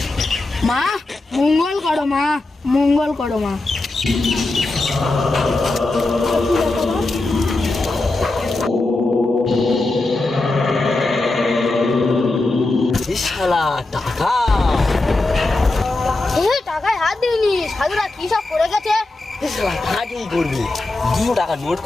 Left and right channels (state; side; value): quieter; right; 3.0 dB